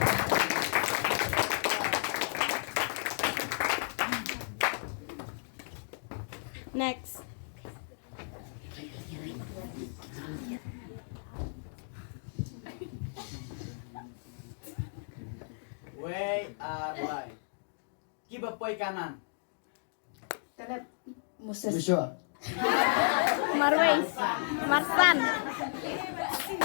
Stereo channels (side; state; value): right; silent; digital silence